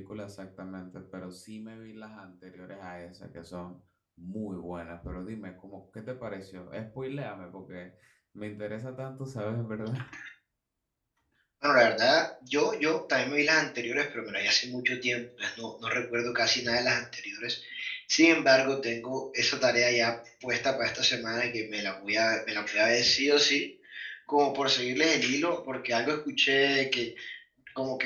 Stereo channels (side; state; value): both; identical; correlation 1.00